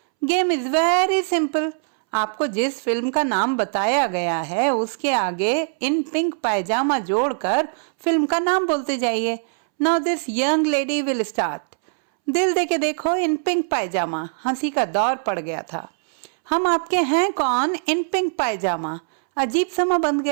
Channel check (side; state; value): left; silent; 64 dB below the other